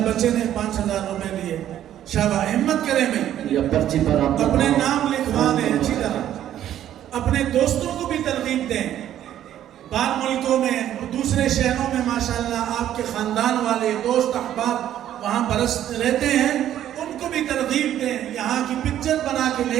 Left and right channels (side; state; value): left; quieter; 11.5 dB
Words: بچے نے 5,000 روپے دیے. شاباش, ہمت کریں بھائی, یا پرچی پر آپ اپنے نام لکھوا دیں اچھی طرح. اپنے دوستوں کو بھی ترغیب دیں. بعض ملکوں میں, دوسرے شہروں میں ماشاءاللہ آپ کے خاندان والے دوست احباب وہاں برس رہتے ہیں, ان کو بھی ترغیب دیں. یہاں کی پکچر بنا کے